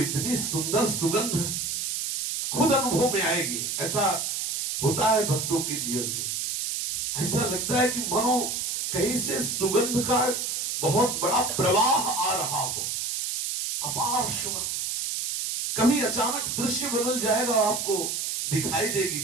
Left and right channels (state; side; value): noise; right; hiss, 2 dB below the sound